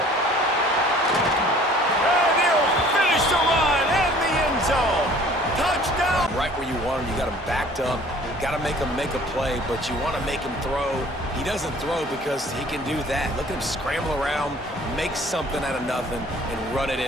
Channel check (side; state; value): both; normal; correlation 0.52